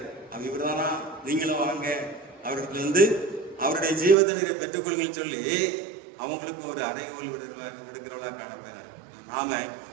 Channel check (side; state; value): left; drops out; at 4.2 s